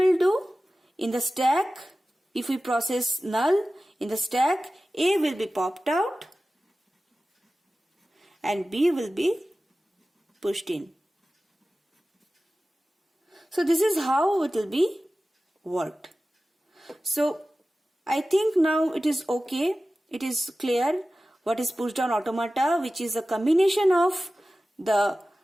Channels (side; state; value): both; normal; correlation 0.96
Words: do? In the stack, if we process null, in the stack A will be popped out and B will be pushed in. So this is how it will be worked. So I think now it is okay. It is clear what is push down automata, which is a combination of the